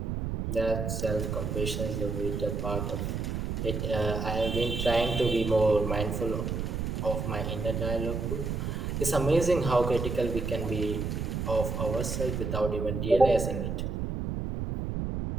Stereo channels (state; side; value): noise; right; rumble, 2 dB below the sound